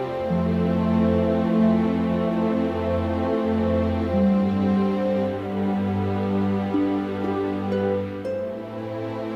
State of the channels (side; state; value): both; identical; correlation 1.00